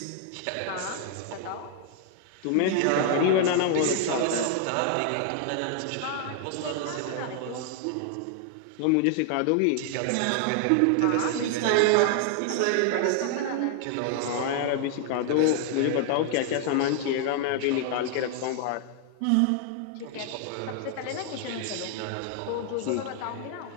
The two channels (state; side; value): different; both; correlation 0.00